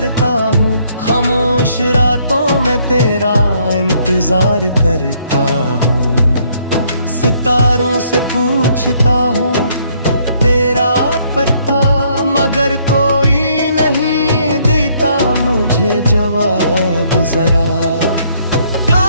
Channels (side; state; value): both; inverted; correlation -0.67